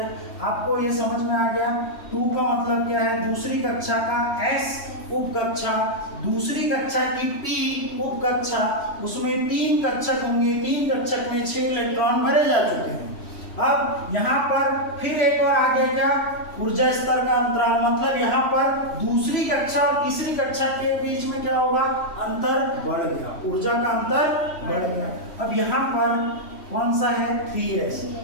आपको ये समझ में आ गया? 2 का मतलब क्या है? दूसरी कक्षा का S उपकक्षा, दूसरी कक्षा की P उपकक्षा, उसमें 3 कक्षक होंगे। 3 कक्षक में 6 इलेक्ट्रॉन भरे जा चुके हैं। अब यहाँ पर फिर एक और आगे क्या? ऊर्जा स्तर का अंतराल, मतलब यहाँ पर दूसरी कक्षा और तीसरी कक्षा के बीच में क्या होगा? अंतर बढ़ गया। ऊर्जा का अंतर बढ़ गया। अब यहाँ पर कौन सा है? 3s।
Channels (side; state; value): right; late; 3.1 ms